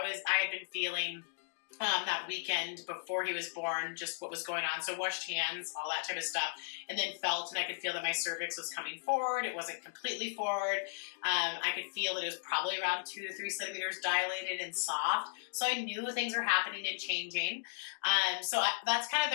had been feeling that weekend before he was born, just what was going on. So washed hands, all that type of stuff, and then felt, and I could feel that my cervix was coming forward. It wasn't completely forward. I could feel that it was probably around 2 to 3 centimeters dilated and soft. So I knew things were happening and changing. That's kind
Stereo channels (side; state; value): right; silent; digital silence